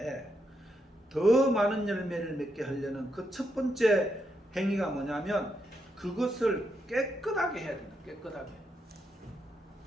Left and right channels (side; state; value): both; normal; correlation 0.81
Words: 더 많은 열매를 맺게 하려는 그 첫 번째 행위가 뭐냐면 그것을 깨끗하게 해야 된다. 깨끗하게.